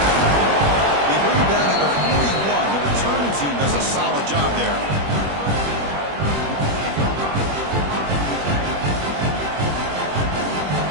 They bring him down at the 41. The return team does a solid job there.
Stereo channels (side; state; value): left; late; 21 ms